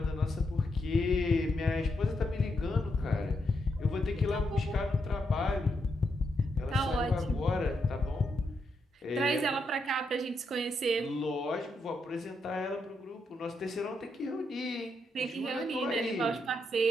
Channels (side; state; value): both; normal; correlation 0.81